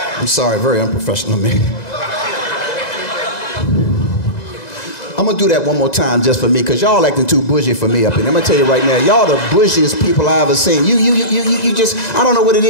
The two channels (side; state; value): right; late; 2.0 ms